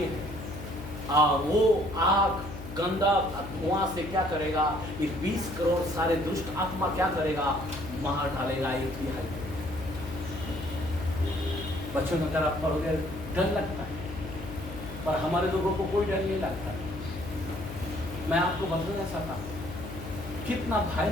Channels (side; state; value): left; noise; hum, 11 dB below the sound